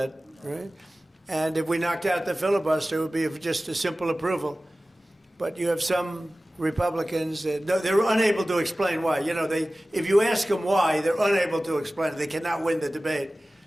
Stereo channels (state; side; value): normal; both; correlation 0.97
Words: right? And if we knocked out the filibuster, it would be just a simple approval. But you have some Republicans that they're unable to explain why. You know, if you ask them why, they're unable to explain it. They cannot win the debate.